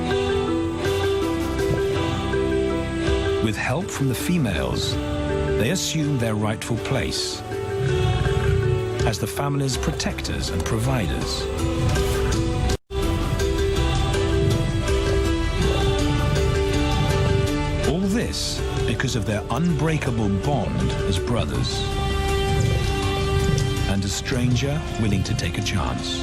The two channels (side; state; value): both; identical; correlation 1.00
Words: With help from the females, they assume their rightful place as the family's protectors and providers. All this because of their unbreakable bond as brothers, and a stranger willing to take a chance.